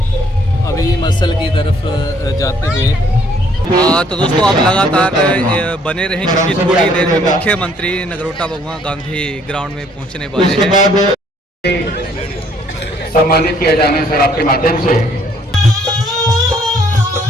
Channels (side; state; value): both; normal; correlation 0.64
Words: अभी muscle की तरफ जाते हुए तो दोस्तों आप लगातार बने रहें क्योंकि थोड़ी देर में मुख्यमंत्री नगरोटा भगवान गांधी ग्राउंड में पहुंचने वाले हैं। सम्मानित किया जाना है सर आपके माध्यम से।